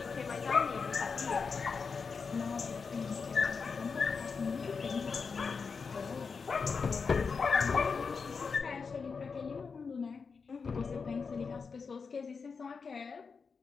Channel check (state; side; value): quieter; right; 5.2 dB